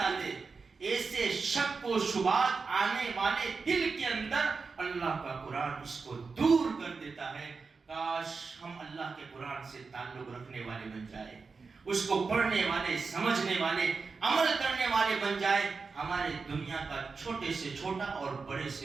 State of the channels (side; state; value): left; quieter; 4.7 dB